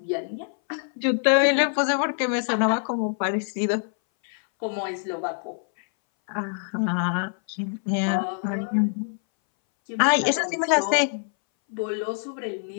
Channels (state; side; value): silent; right; 60 dB below the other